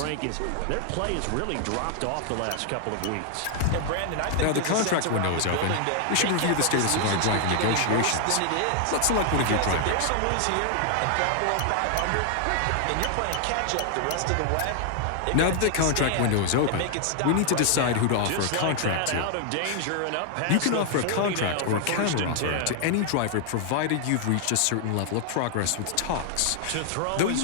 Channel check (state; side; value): different; both; correlation 0.00